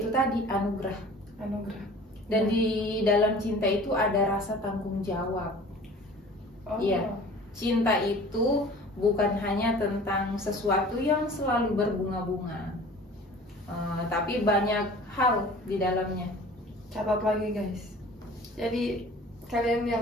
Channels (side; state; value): both; normal; correlation 0.45